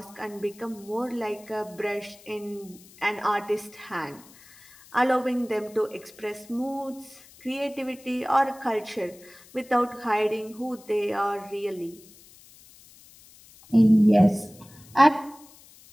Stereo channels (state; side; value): noise; left; hiss, 24 dB below the sound